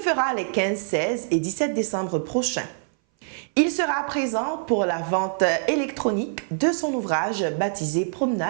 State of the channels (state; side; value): silent; left; 59 dB below the other